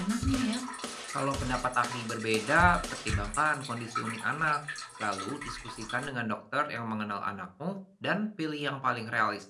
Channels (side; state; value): both; identical; correlation 1.00